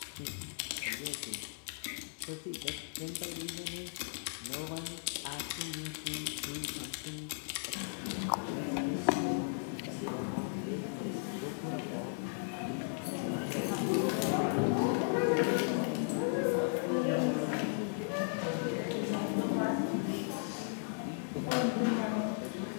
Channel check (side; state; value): right; silent; 54 dB below the other